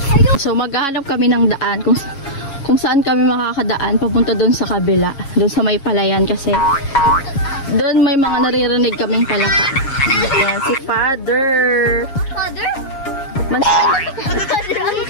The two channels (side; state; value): right; late; 7.3 ms